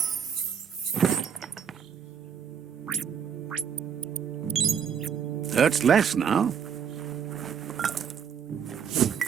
Hurts less now.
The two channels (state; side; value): quieter; left; 7.6 dB